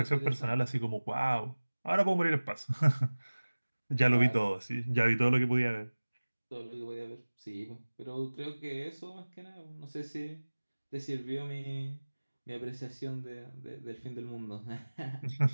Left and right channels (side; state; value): both; inverted; correlation -1.00